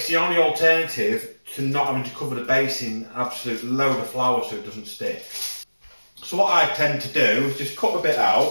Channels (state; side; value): inverted; both; correlation -1.00